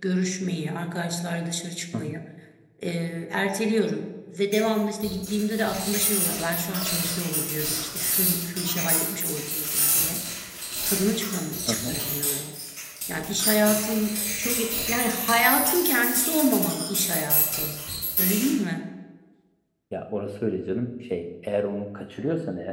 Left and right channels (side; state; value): both; identical; correlation 1.00